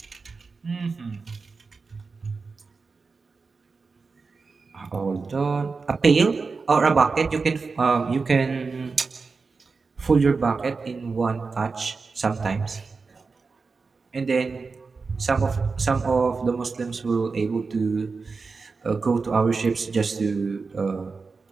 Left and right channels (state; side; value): quieter; left; 4.5 dB